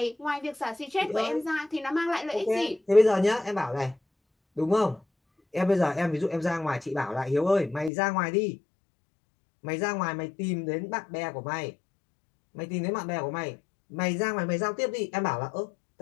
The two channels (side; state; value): right; drops out; at 7.9 s